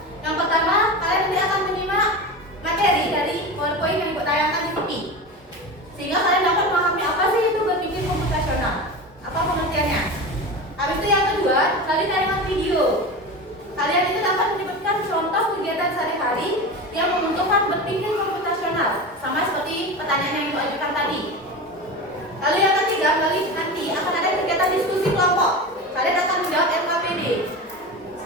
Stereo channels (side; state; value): both; normal; correlation 0.26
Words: yang pertama, kalian nanti akan menyimak materi dari PowerPoint yang tayangkan di TV, sehingga kalian dapat memahami apa sih itu berpikir komputasional, apa pengertiannya. Habis itu yang kedua, melalui tayangan video, kalian itu dapat menyebutkan contoh kegiatan sehari-hari yang membutuhkan berpikir komputasional, sama seperti pertanyaan yang Ibu ajukan tadi. Lalu yang ketiga, melalui nanti akan ada kegiatan diskusi kelompok. Kalian akan menjawab LKPD